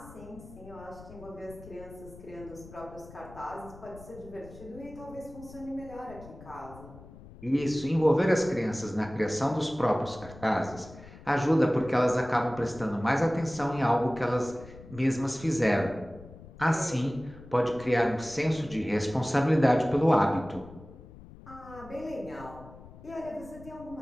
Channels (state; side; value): noise; left; rumble, 18 dB below the sound